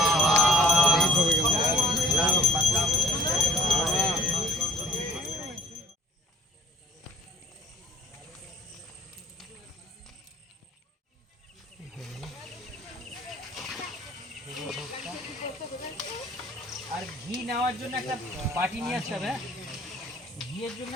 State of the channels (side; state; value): both; normal; correlation 0.51